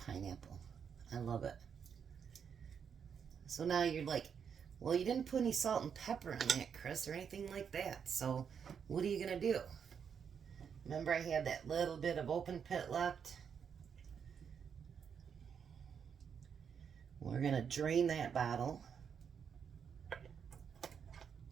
I love it. So now you're like, well, you didn't put any salt and pepper on that, Chris, or anything like that. So what are you going to do? Remember I had that little bit of open pit left? We're going to drain that bottle.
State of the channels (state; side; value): quieter; left; 7.2 dB